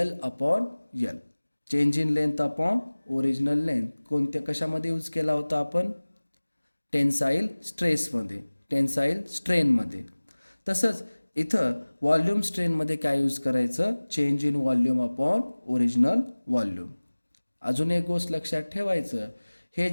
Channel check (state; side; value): inverted; both; correlation -1.00